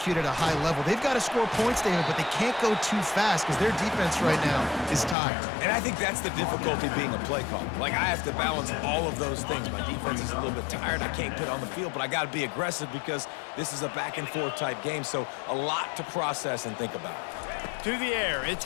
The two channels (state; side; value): drops out; right; at 5.2 s